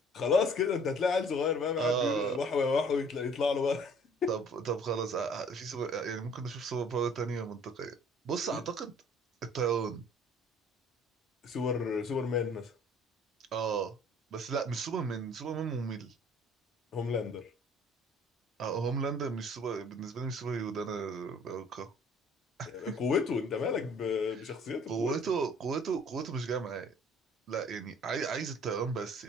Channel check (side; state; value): both; normal; correlation 0.54